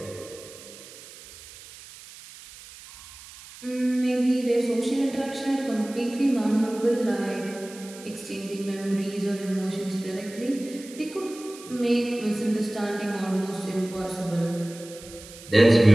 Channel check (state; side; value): noise; right; hiss, 18 dB below the sound